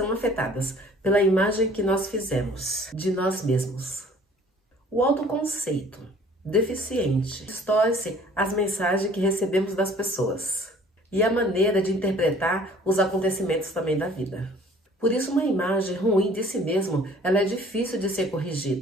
afetadas pela imagem que nós fizemos de nós mesmos. O autoconceito deficiente distorce as mensagens que recebemos das pessoas e a maneira de interpretar os acontecimentos também da vida. Por isso, uma imagem ruim de si mesmo, ela é difícil de ser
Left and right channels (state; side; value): normal; both; correlation 0.53